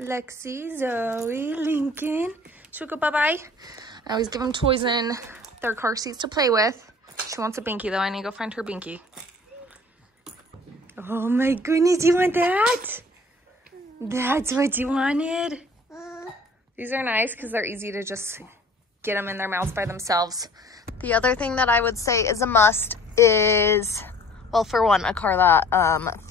Lexi, Zoe, Lincoln. Should we go bye-bye? I always give them toys in their car seats to play with. She wants a Binky though. I need to go find her Binky. Oh my goodness, you want that? That's what you wanted? These are nice because they're easy to just get them in their mouths by themselves. The other thing that I would say is a must is Well, for one, a car that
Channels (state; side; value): normal; both; correlation 0.50